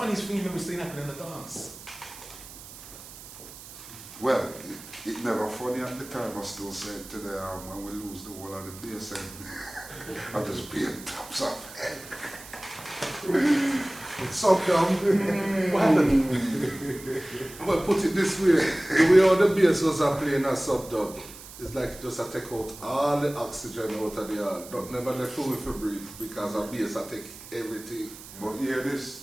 thing you've ever seen happen in the dance? Well, it never funny at the time. I still say it today when we lose the whole of the bass and I just pay tops off. So what happened? Well, put it this way, the way all the bass was playing a sub-dub, it's like just I take out all the oxygen out of the air. Don't never let room for breathe because a bass I take everything. But hear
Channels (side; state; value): right; noise; hiss, 16 dB below the sound